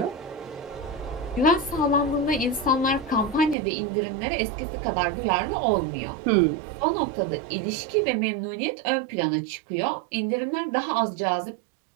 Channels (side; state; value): left; drops out; at 3.6 s